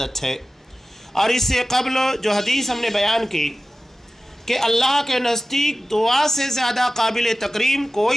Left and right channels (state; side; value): normal; both; correlation 0.95